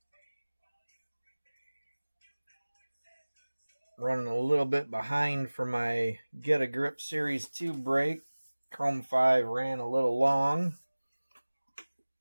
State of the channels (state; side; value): inverted; both; correlation -1.00